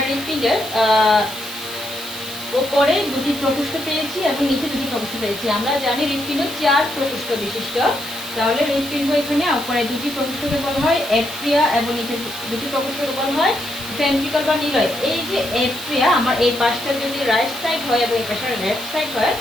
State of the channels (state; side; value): noise; right; hiss, 12 dB below the sound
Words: হৃৎপিণ্ডের উপরে দুটি প্রকোষ্ঠ পেয়েছি এবং নিচে দুটি প্রকোষ্ঠ পেয়েছি। আমরা জানি হৃৎপিণ্ড 4 প্রকোষ্ঠ বিশিষ্ট, তাহলে হৃৎপিণ্ড এখানে উপরে দুটি প্রকোষ্ঠকে বলা হয় এট্রিয়া এবং নিচে দুটি প্রকোষ্ঠকে বলা হয় ভেন্ট্রিকল বা নিলয়। এই যে এট্রিয়া আমার এই পাশটা যদি রাইট সাইড হয় এবং এই পাশটা লেফট সাইড হয়,